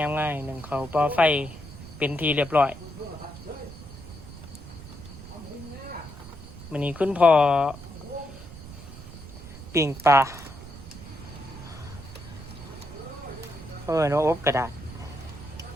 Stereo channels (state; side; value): noise; right; rumble, 14 dB below the sound